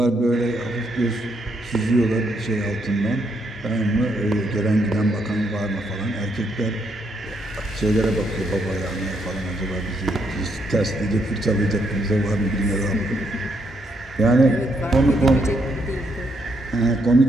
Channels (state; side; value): normal; both; correlation 0.76